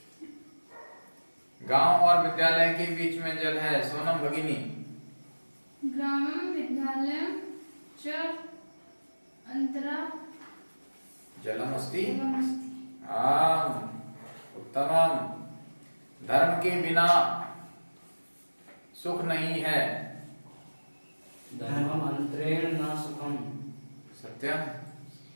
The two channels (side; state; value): both; inverted; correlation -1.00